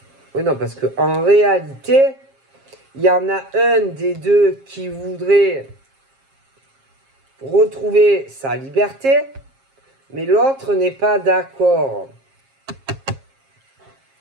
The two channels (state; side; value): late; left; 7.4 ms